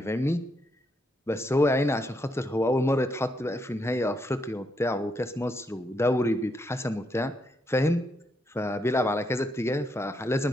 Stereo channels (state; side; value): normal; both; correlation 0.77